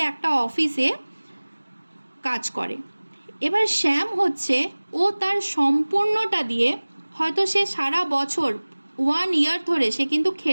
একটা অফিসে কাজ করে। এবার শ্যাম হচ্ছে, ও তার সম্পূর্ণটা দিয়ে হয়তো সে সারা বছর 1 ইয়ার ধরে সে কিন্তু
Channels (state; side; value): inverted; both; correlation -1.00